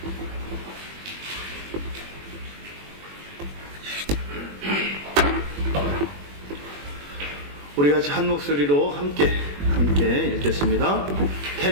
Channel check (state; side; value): late; left; 21 ms